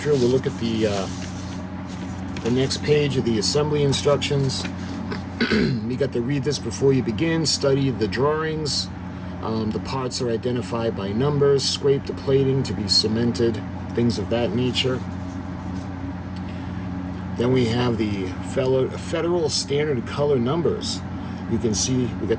we'll look at the next page of the assembly instructions. You got to read this before you begin, study the drawings. The parts are identified by numbers, scrape the plating to be cemented, things of that nature. Then we have the Federal Standard Color numbers. You can see we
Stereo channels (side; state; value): both; identical; correlation 1.00